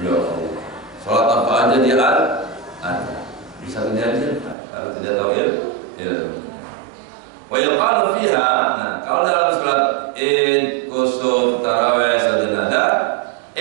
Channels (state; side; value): drops out; left; at 4.5 s